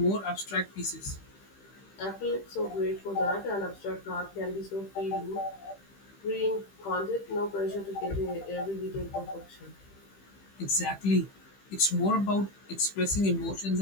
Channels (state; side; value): late; right; 15 ms